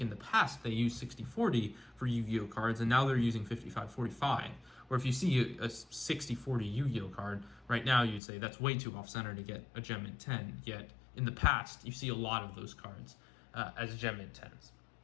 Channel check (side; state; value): right; drops out; at 8.2 s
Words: in the past they used 60/40 for Yu-Gi-Oh cards, and now they're using 55/45. Or if you see a 60/40 Yu-Gi-Oh card right now, you'd say that's way too off-center to get a Gem Mint 10. Yet in the past, you see a lot of those cards as Gem Mint 10s.